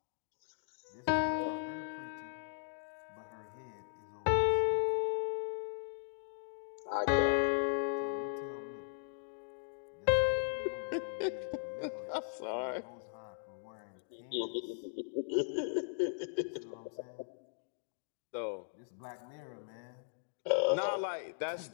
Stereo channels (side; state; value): right; silent; digital silence